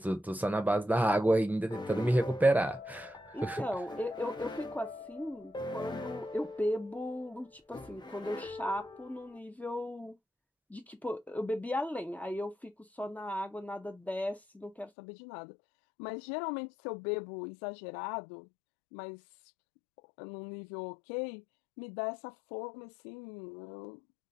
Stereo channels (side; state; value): right; drops out; at 14.9 s